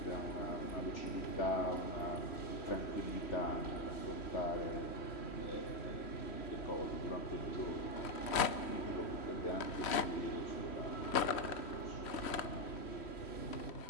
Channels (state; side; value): late; right; 3.1 ms